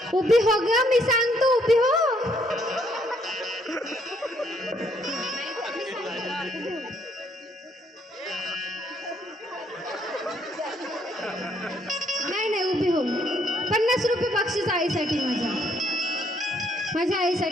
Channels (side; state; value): both; normal; correlation 0.69